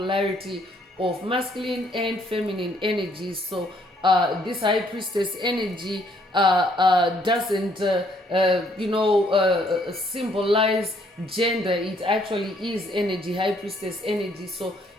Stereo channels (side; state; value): both; normal; correlation 0.67